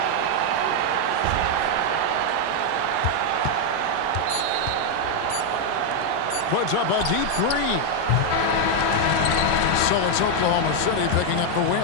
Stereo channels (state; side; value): different; both; correlation 0.01